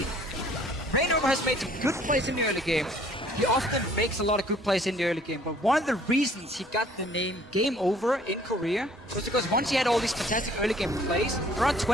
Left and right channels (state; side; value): normal; both; correlation 0.57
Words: Rainova has made some good plays in the early game. He often makes a lot of good plays in the early game, but one of the reasons he got the name Game Over in Korea was because once he had all these fantastic early game plays, around